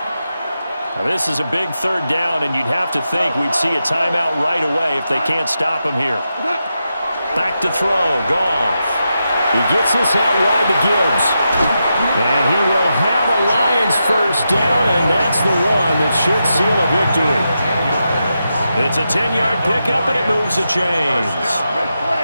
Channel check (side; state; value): both; inverted; correlation -0.87